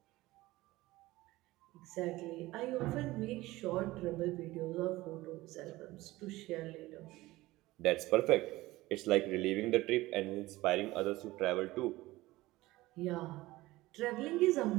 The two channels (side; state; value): left; quieter; 18.6 dB